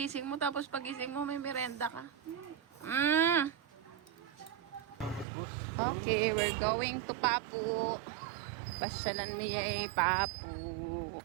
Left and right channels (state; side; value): drops out; left; at 5.2 s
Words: mo tapos pagising mo may merenda ka. Okay, we're going to Papu. Pasyalan mo Papu.